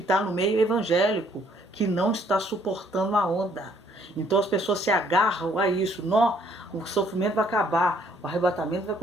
no meio evangélico, que não está suportando a onda. Então as pessoas se agarram a isso. Não, o sofrimento vai acabar, o arrebatamento vai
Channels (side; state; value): both; normal; correlation 0.64